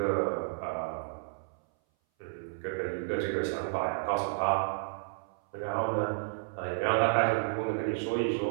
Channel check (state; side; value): silent; left; 57 dB below the other